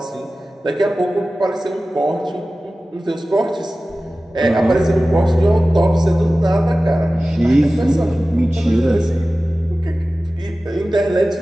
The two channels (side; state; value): both; normal; correlation 0.96